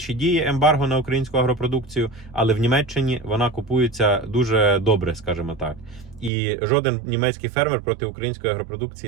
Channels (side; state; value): left; drops out; at 6.3 s